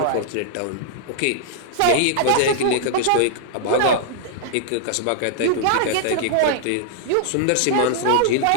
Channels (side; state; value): both; different; correlation -0.01